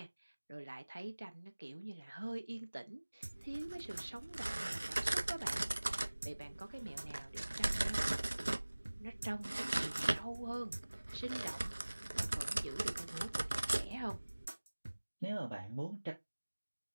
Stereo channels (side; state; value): both; inverted; correlation -1.00